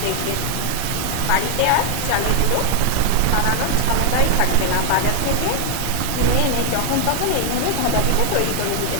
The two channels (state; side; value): different; both; correlation 0.00